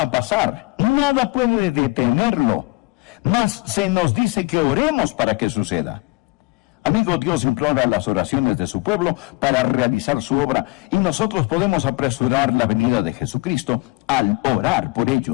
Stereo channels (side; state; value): right; quieter; 24.6 dB